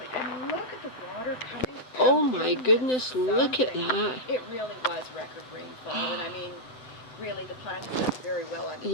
and look at the water coming out. Oh my goodness, look at that. It really was record rainfall, and I mean, really the plant has done very well under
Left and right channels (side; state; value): right; late; 7.9 ms